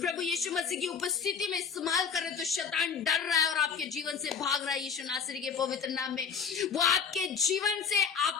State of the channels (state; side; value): quieter; right; 6.2 dB